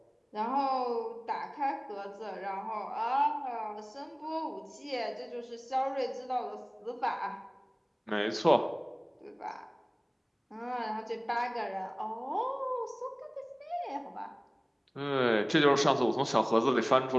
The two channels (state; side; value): identical; both; correlation 1.00